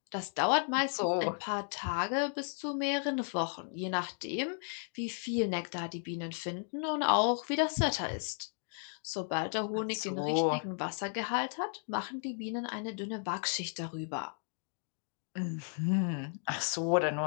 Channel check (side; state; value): right; silent; 55 dB below the other